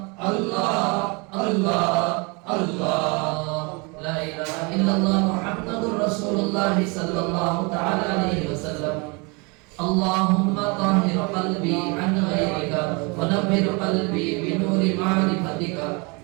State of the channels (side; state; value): left; quieter; 29.8 dB